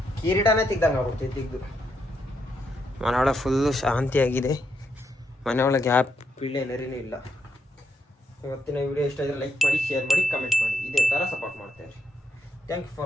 ಕಿರೀಟನೇ ತೆಗ್ದಂಗೆ ಆಗ್ಬಿಡ್ತೀವಿ. ತೆಗೆದು ಮನೆಯೊಳಗೆ ಫುಲ್ಲು ಶಾಂತಿಯಾಗಿದೆ. ಮನೆಯೊಳಗೆ ಯಾವ ಪಿಳ್ಳೆ ನರಿನೂ ಇಲ್ಲ. ಇವತ್ತಿನ ವಿಡಿಯೋ ಇಷ್ಟ ಆದರೆ ಲೈಕ್ ಮಾಡಿ, ಶೇರ್ ಮಾಡಿ, ಕಮೆಂಟ್ ಮಾಡಿ. ಇದೇ ಥರ ಸಪೋರ್ಟ್ ಮಾಡ್ತೇವೆ. Thank you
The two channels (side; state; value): both; normal; correlation 0.79